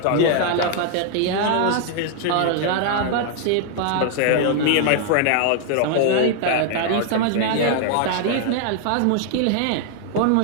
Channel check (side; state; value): both; different; correlation 0.00